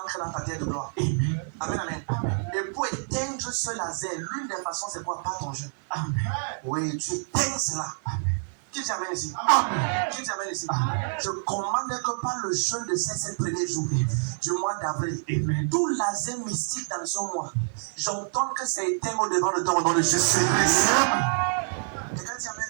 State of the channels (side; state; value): left; silent; digital silence